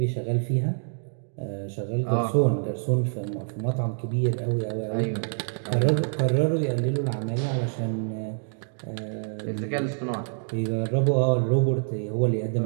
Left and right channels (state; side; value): silent; left; digital silence